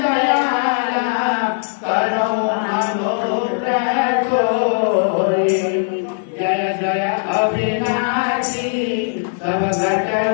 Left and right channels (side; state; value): right; silent; digital silence